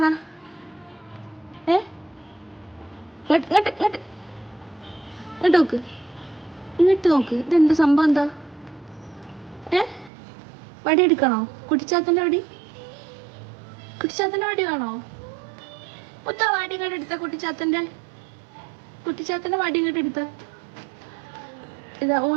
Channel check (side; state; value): left; drops out; at 10.1 s